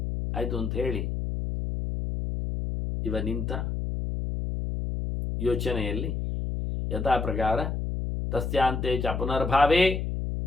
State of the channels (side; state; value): left; noise; hum, 3 dB below the sound